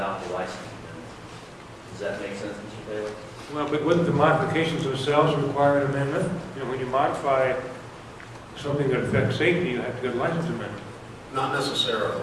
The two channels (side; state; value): both; identical; correlation 1.00